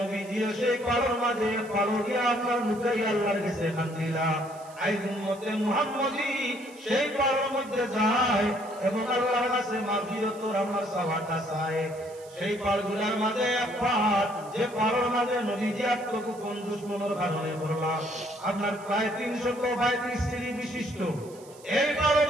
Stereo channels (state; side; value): noise; right; hiss, 23 dB below the sound